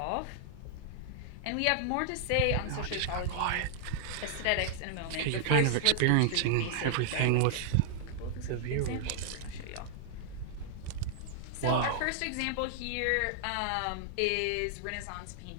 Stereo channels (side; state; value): both; different; correlation -0.01